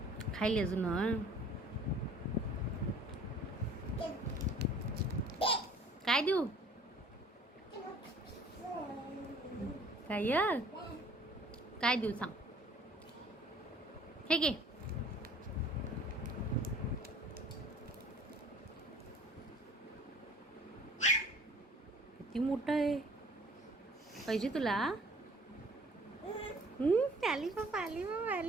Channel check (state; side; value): normal; both; correlation 0.52